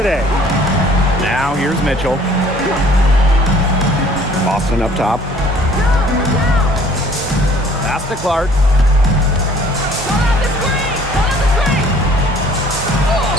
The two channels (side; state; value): both; normal; correlation 0.55